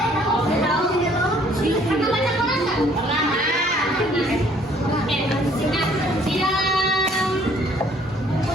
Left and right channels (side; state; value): both; normal; correlation 0.60